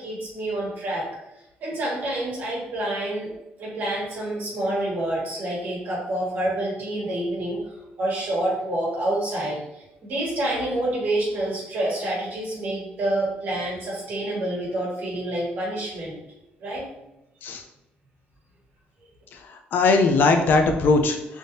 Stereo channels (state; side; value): normal; both; correlation 0.65